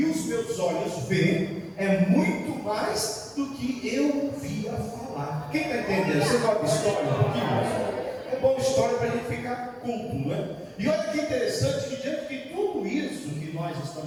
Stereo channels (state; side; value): identical; both; correlation 1.00